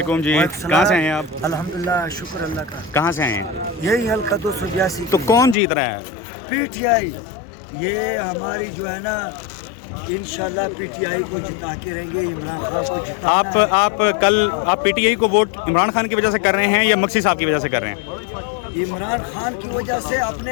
जी, कहाँ से हैं आप? अल्हम्दुलिल्लाह, शुक्र अल्लाह का। कहाँ से हैं? यही हल्का 282। तो कौन जीत रहा है? PTI। ये हमारी जो है ना इंशाल्लाह पीटीआई को जिता के रहेंगे, इमरान खान को जिताना है। आप कल आप पीटीआई को वोट इमरान खान की वजह से कर रहे हैं या मक्सी साहब की वजह से कर रहे हैं? इमरान खान की वजह से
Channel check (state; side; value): drops out; right; at 5.6 s